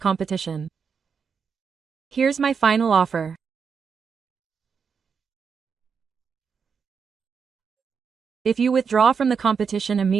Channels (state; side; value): quieter; left; 6.1 dB